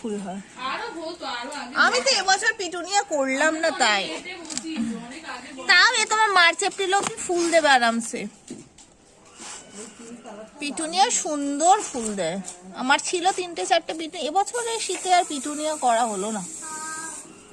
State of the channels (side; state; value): both; identical; correlation 1.00